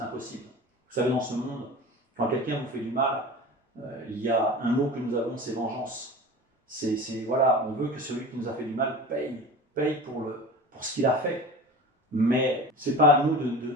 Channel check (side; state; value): both; normal; correlation 0.34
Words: impossible. Vous savez, dans ce monde, quand quelqu'un vous fait du mal, il y a un mot que nous avons, c'est vengeance. Voilà, on veut que celui qui nous a fait du mal paye pour ce qu'il a fait. Mais ce n'est pas à nous